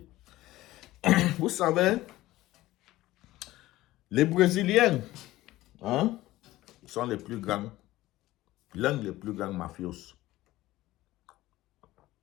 Vous savez, les Brésiliens, hein, sont les plus grands, l'un des plus grands mafios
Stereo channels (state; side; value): quieter; right; 16.8 dB